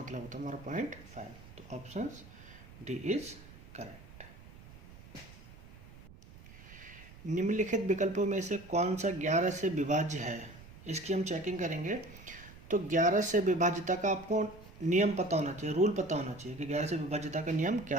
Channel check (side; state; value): right; noise; rumble, 19 dB below the sound